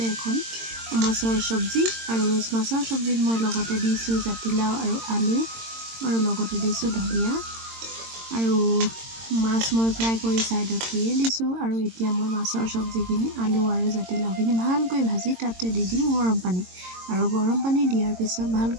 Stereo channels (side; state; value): left; late; 22 ms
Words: এখন মাছৰ চব্জি। আৰু মাছৰ চব্জিত মই লগতে দিছোঁ জাতিলাও আৰু আলু, আৰু লগতে দিছোঁ ধনিয়া, আৰু মাছ মই ফ্ৰাই কৰি ছাইডত থৈয়ে দিছোঁ। আৰু এতিয়া মই মাছৰ চব্জিখিনি আলু আৰু জাতিলাওখিনি ভালকৈ ভাজি তাতে দি দিম গৰম পানী। আৰু গৰম পানী দিয়াৰ পিছত